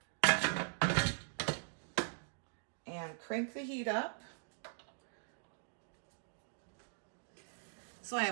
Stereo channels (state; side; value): silent; left; digital silence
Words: And crank the heat up. So I